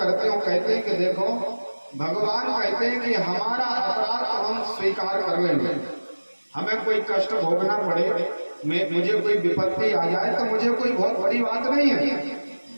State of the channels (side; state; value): both; inverted; correlation -1.00